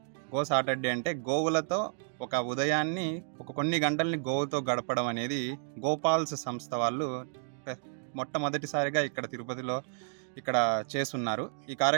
గో సాటర్‌డే అంటే గోవులతో ఒక ఉదయాన్ని కొన్ని గంటల్ని గోవుతో గడపడం అనేది గోపాల్స్ సంస్థ వాళ్ళు పె మొట్టమొదటిసారిగా ఇక్కడ తిరుపతిలో చేసున్నారు. ఈ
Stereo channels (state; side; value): silent; left; digital silence